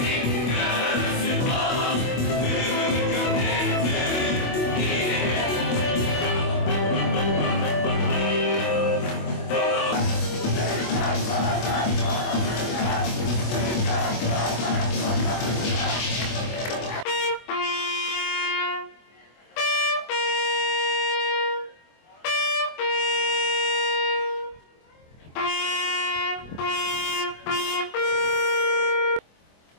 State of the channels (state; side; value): late; right; 24 ms